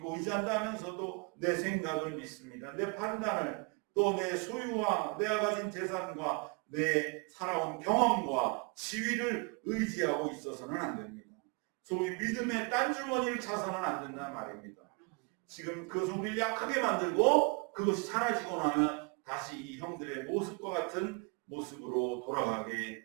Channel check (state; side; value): quieter; left; 34.9 dB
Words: 의지한다 하면서도 내 생각을 믿습니다. 내 판단을, 또 내 소유와 내가 가진 재산과 내 살아온 경험과 지위를 의지하고 있어서는 안 됩니다. 소위 믿음의 딴주머니를 차서는 안 된다는 말입니다. 지금 그것을 우리를 약하게 만들고 그것이 사라지고 나면 다시 이 형들의 모습과 같은 모습으로 돌아가게